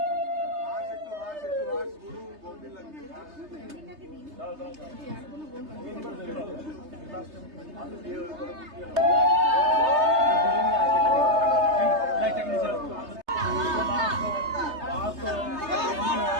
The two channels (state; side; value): late; left; 3.3 ms